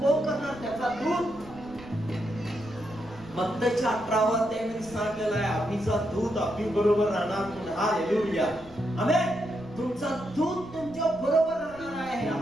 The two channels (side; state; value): right; noise; rumble, 21 dB below the sound